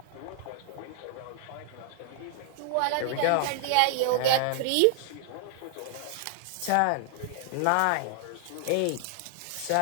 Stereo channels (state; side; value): different; both; correlation 0.00